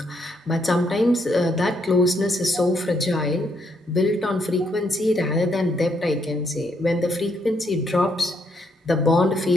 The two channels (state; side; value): normal; both; correlation 0.74